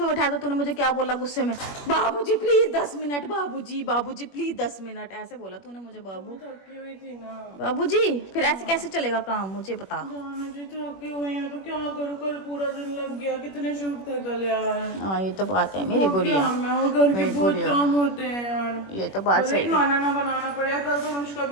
उठाया था, तूने मुझे क्या बोला गुस्से में? बाबूजी प्लीज 10 मिनट, बाबूजी प्लीज 10 मिनट, ऐसे बोला तूने मुझे। बाबू थकी हुई थी ना। बाबूजी फिर ऐसे कैसे चलेगा काम, मुझे बता। जानो जी थकी हुई है तो क्या करूँ, कल पूरा दिन लग गया। कितने शूट थे कल यार। हाँ ये तो बात है मेरी गुड़िया, घर के बहुत काम होते हैं यार। ये तो बात सही है। खाना ना बनाना पड़ेगा। कल तो अनुष्का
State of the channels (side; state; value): right; late; 21 ms